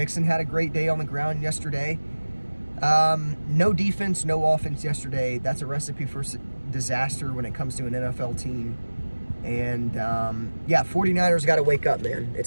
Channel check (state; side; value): inverted; both; correlation -1.00